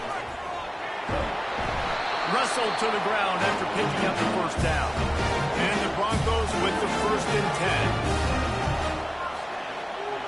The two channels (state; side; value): identical; both; correlation 1.00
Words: Wrestled to the ground after picking up the 1st down. And the Broncos with the 1st and 10.